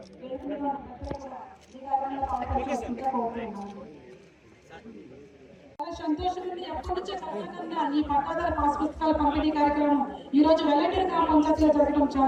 సంతోషం నుండి ఎప్పటి నుంచో కలగకుండా ఈ పట్టాదారు పాస్ పుస్తకాల పంపిణీ కార్యక్రమం ఈ రోజు వెల్లటూరు గ్రామ పంచాయతీలో జరగడం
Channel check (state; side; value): identical; both; correlation 1.00